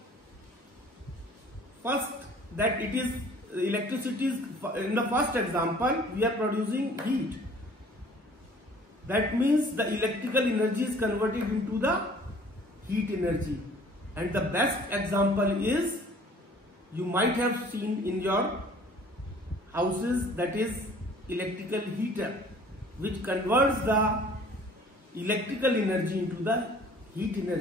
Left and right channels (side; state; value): both; normal; correlation 0.52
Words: first, that it is electricity is, in the first example we are producing heat. That means the electrical energy is converted into the heat energy, and the best example is, you might have seen in your houses, that is electrical heater, which converts the electrical energy into the heat